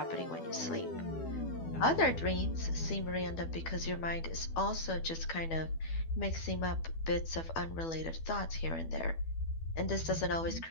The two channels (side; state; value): right; late; 12 ms